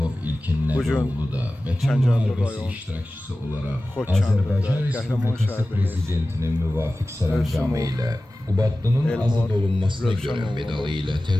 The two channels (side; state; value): both; normal; correlation 0.96